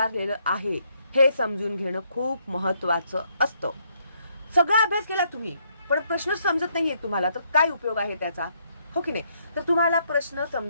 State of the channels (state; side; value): inverted; both; correlation -0.72